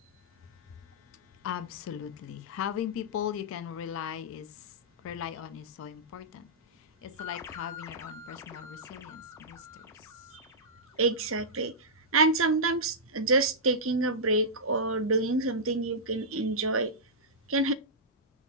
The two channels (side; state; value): both; normal; correlation -0.13